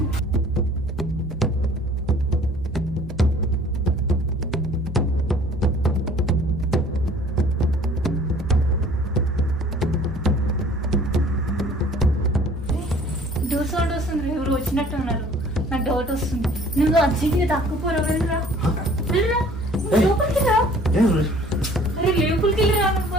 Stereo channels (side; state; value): both; normal; correlation 0.52